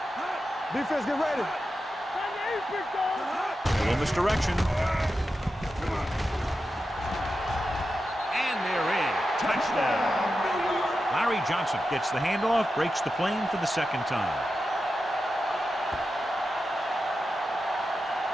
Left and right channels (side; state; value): both; normal; correlation 0.90